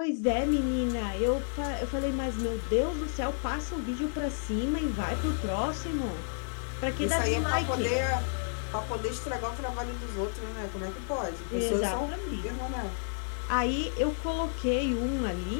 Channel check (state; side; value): silent; right; digital silence